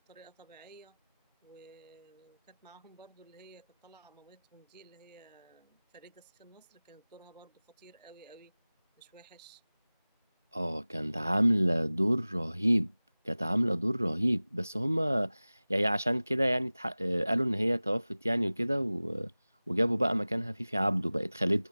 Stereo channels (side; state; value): both; inverted; correlation -0.99